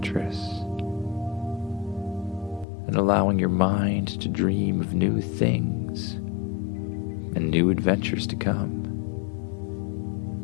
And allowing your mind to dream of new things and new adventures to come.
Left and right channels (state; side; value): drops out; right; at 2.7 s